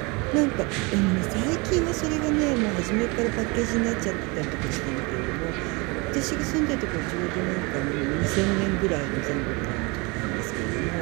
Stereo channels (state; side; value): quieter; left; 27.8 dB